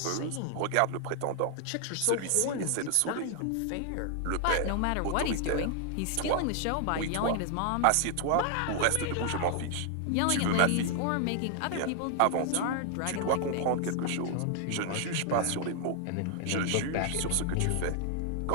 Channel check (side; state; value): both; different; correlation 0.00